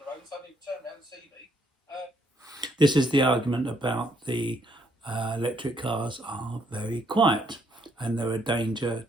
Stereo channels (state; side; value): normal; both; correlation 0.71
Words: the road and suddenly turn around and see me. This is the argument about the electric cars are very quiet and they're a danger